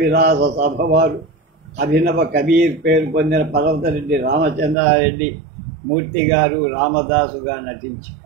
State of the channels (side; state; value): left; drops out; at 4.8 s